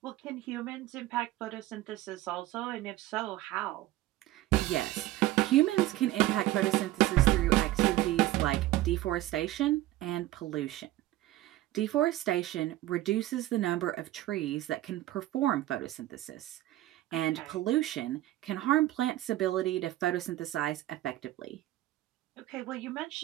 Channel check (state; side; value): quieter; left; 15.9 dB